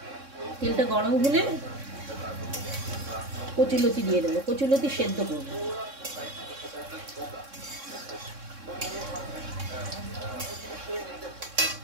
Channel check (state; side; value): late; left; 3.6 ms